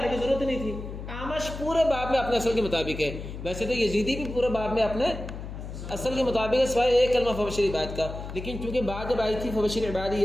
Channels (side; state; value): left; noise; hum, 9 dB below the sound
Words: کی ضرورت نہیں تھی. آمش پورے باب میں اپنے اصل کے مطابق ہے. ویسے تو یزیدی بھی پورے باب میں اپنے اصل کے مطابق ہے سوائے ایک کلمہ فبشر عباد کا. لیکن چونکہ بات جب آئی تھی فبشر عبادی